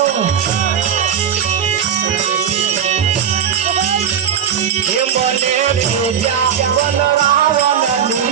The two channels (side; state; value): left; quieter; 8.5 dB